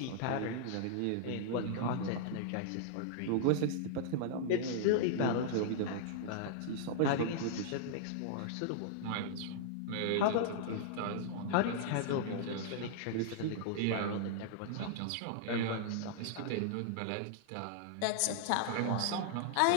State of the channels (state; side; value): different; both; correlation -0.01